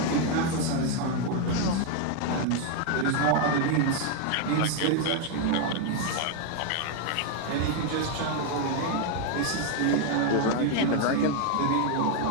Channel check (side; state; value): both; different; correlation 0.00